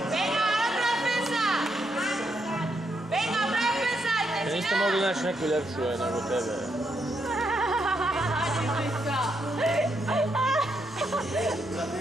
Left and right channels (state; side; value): normal; both; correlation 0.79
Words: Venga, otra defensa! Venga, otra defensa! Niste mogli naći neku ljepšu nego tebe.